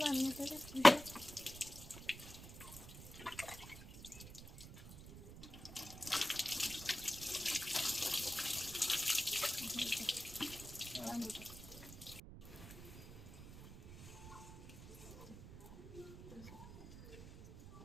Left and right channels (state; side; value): noise; right; rumble, 14 dB below the sound